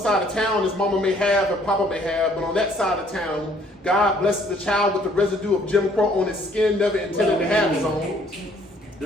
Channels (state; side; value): normal; both; correlation 0.61